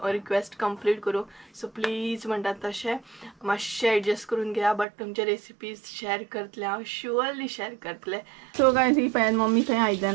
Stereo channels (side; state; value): left; drops out; at 4.9 s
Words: कंप्लीट करूं. सो प्लीज म्हणटा तशें मातशें एडजस्ट करून घेया. बट तुमचे रेसिपीज शेअर करतले, हांव शुअरली शेअर करतले. सो गायज ही पळयात मम्मी थंय